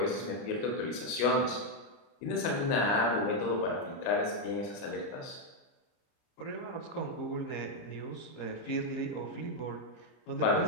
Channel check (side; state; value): right; late; 30 ms